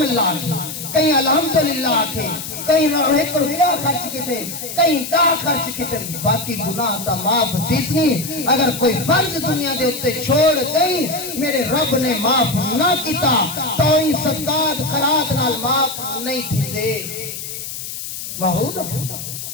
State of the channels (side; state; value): left; noise; hiss, 8 dB below the sound